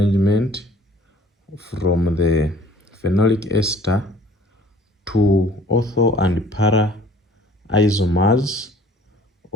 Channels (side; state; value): both; normal; correlation 0.53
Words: from the phenolic ester to ortho and para isomers